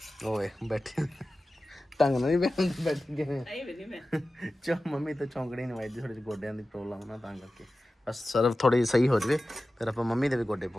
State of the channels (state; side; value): normal; both; correlation 0.95